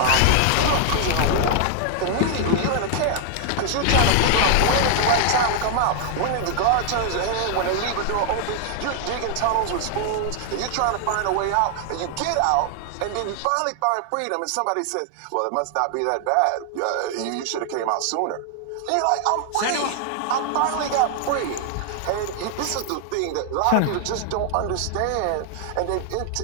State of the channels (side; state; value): both; different; correlation 0.00